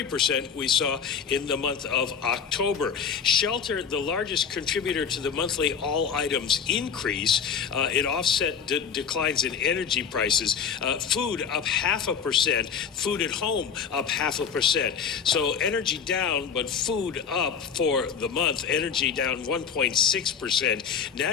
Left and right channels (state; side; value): quieter; right; 6.8 dB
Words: we saw in the month of October. Shelter, the largest contributor to the monthly all items increase, it offset declines in energy prices. Food up 0.5%, food at home up 0.5%. So energy down, but food up for the month. Energy down 1.6%.